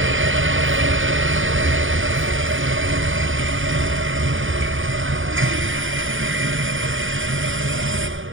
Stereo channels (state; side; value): late; left; 0.57 ms